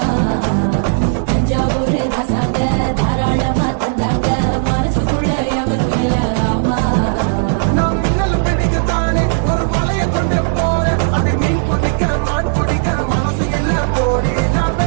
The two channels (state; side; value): silent; left; digital silence